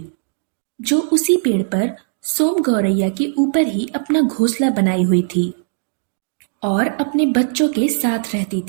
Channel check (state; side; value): silent; left; digital silence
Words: जो उसी पेड़ पर सोम गौरैया के ऊपर ही अपना घोंसला बनाई हुई थी और अपने बच्चों के साथ रहती